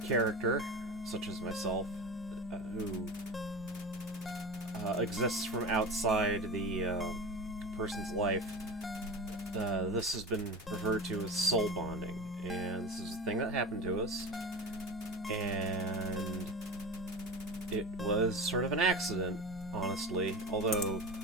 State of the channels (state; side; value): normal; both; correlation 0.29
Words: such as myself, who exists from outside the person's life. This has been referred to as soul bonding, and this is a thing that happened to us, and it was sort of an accident, honestly, although